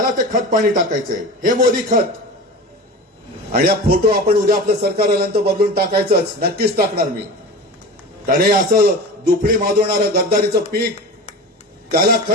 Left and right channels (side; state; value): both; normal; correlation 0.31